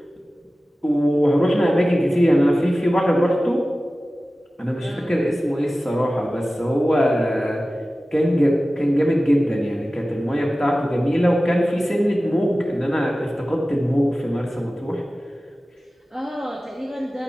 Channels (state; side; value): normal; both; correlation 0.96